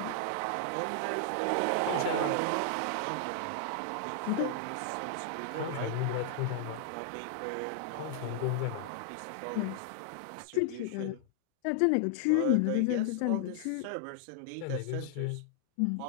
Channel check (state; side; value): different; both; correlation -0.01